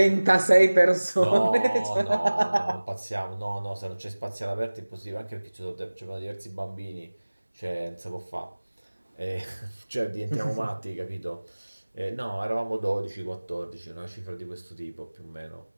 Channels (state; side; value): inverted; both; correlation -1.00